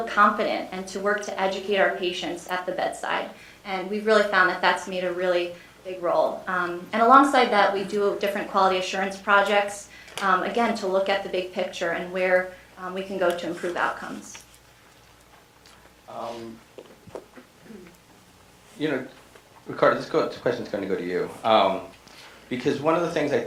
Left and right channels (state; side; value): identical; both; correlation 1.00